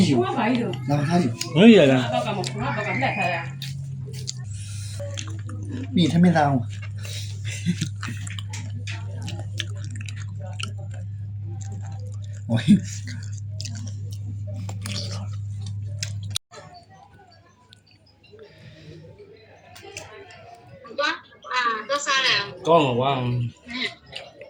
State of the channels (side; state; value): both; identical; correlation 1.00